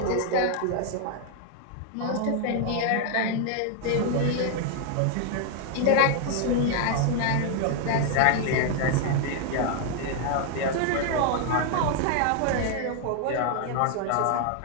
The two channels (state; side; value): different; both; correlation 0.00